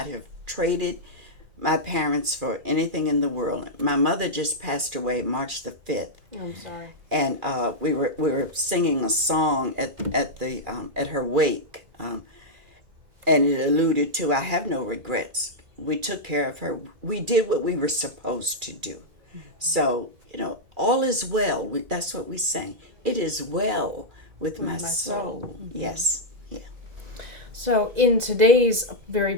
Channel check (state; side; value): late; left; 2.4 ms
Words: have traded my parents for anything in the world. My mother just passed away March the 5th. I'm sorry. And we were singing a song at her wake, and it alluded to, I have no regrets. We took care of her. We did what we were supposed to do. So, all is well. That's what we sang. It is well with my soul. Mm-hmm. Yes. So in today's very